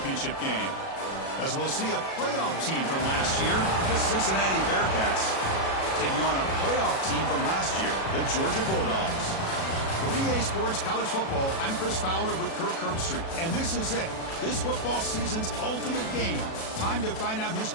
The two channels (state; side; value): late; right; 37 ms